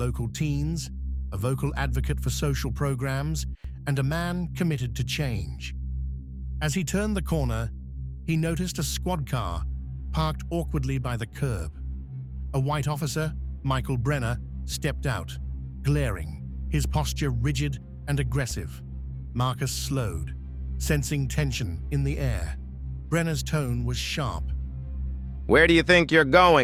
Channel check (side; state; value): both; identical; correlation 1.00